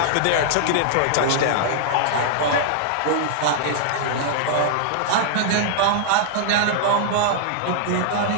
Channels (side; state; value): both; different; correlation -0.01